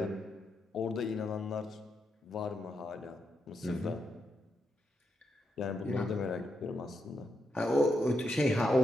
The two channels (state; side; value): normal; both; correlation 0.83